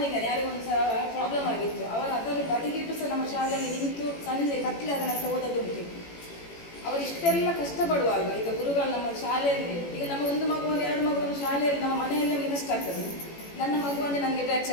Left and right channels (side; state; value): right; late; 18 ms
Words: ಯಾರಿಗೊಂದು ಸಹ ಪ್ರಾಬ್ಲಮ್ ಆಗಿತ್ತು, ಅವರು ಅದನ್ನು ಬದಿಗಿಟ್ಟು ಸಹ ನಮ್ಮ ಶಾಲೆಯಲ್ಲಿ ನಿಂತು ಸಂಜೆ ಕತ್ಲೆ ಅದನ್ನು ಓದೋದುಂಟು. ಅವರು ಇಷ್ಟೆಲ್ಲ ಕಷ್ಟಪಡುವಾಗ ಈಗ ಗುರುಗಳು ನಮ್ಮ ಶಾಲೆಯಲ್ಲಿ, ಈಗ ನಮ್ಮ ಒಂದು ಮಗುವನ್ನು 2 ಮಗುವನ್ನು ಶಾಲೆಯಲ್ಲಿ ನಮ್ಮ ಮನೆಯಲ್ಲೇ ನಮಗೆ ಕಷ್ಟ ಆಗ್ತದೆ. ನನ್ನ ಮಗುವನ್ನೇ ನನಗೆ ಬ್ಯಾಗ್